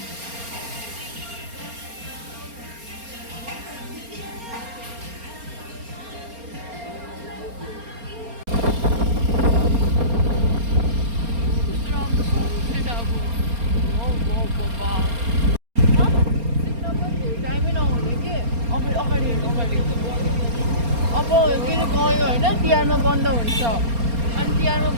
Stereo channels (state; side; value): late; left; 4.3 ms